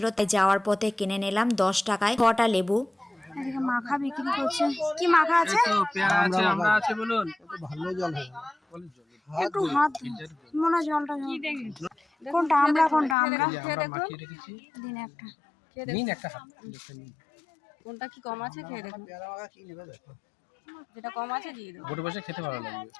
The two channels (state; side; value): drops out; right; at 13.2 s